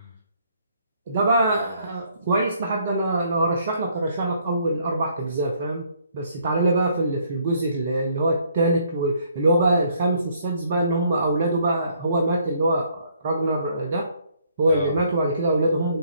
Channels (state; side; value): inverted; both; correlation -0.66